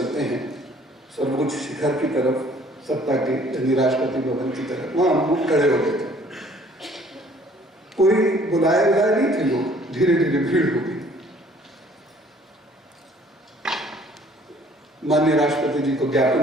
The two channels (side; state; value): both; normal; correlation 0.57